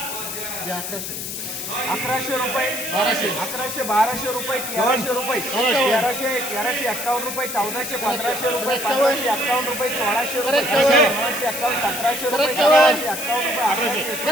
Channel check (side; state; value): left; noise; hiss, 6 dB below the sound